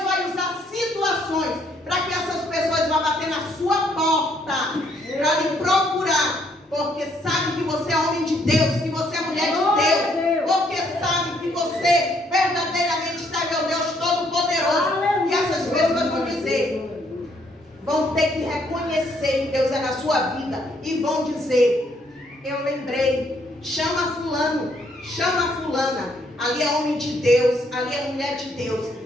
vai usar situações para que essas pessoas vão bater na sua porta, para lhe procurar. Porque sabe que você é homem de Deus, que você é mulher de Deus, porque sabe que você verdadeiramente serve ao Deus Todo-Poderoso. E essas pessoas vão dizer, vão ter que reconhecer que Deus é na sua vida e vão dizer: eu lembrei, chama fulano, chama fulana, ali é homem de Deus, ali é mulher de Deus,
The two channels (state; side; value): normal; both; correlation 0.69